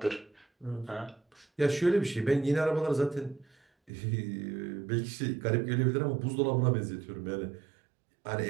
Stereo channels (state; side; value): drops out; left; at 3.9 s